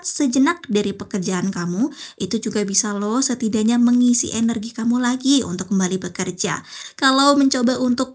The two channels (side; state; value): both; identical; correlation 1.00